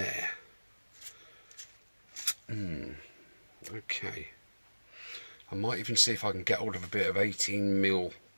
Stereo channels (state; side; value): inverted; both; correlation -1.00